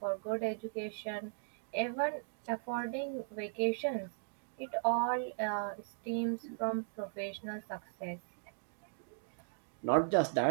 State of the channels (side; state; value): left; silent; digital silence